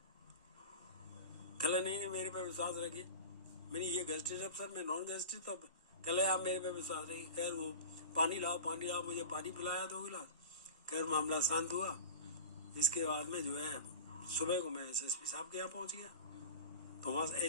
कह रहे नहीं मेरे पे विश्वास रखिए। मैंने ये गेस्टेड अफसर, मैं नॉन गेस्टेड। तो कह रहे आप मेरे पे विश्वास रखिए। खैर वो पानी लाओ, मुझे पानी पिलाया 2 गिलास। खैर मामला शांत हुआ। इसके बाद में जो है सुबह को मैं एसएसपी साहब के यहाँ पहुंच गया, तो वहाँ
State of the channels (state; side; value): inverted; both; correlation -0.34